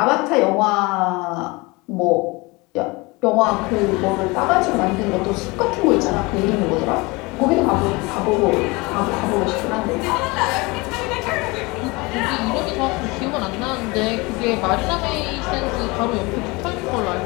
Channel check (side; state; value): right; quieter; 24.9 dB